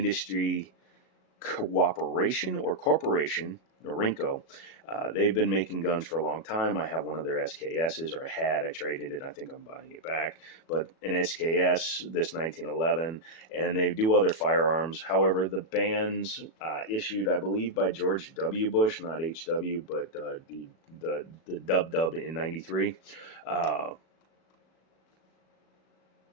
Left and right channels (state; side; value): late; right; 37 ms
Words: Cooperation or Corporation, Norinco, they've been making guns for a long time. I have one of their SKSs, or I traded it. I think I'm buying it back. But an SKS, this 1911, and they do other firearms. However, the bans issued, I believe, by George W. Bush, not HW, but the Dub in 93.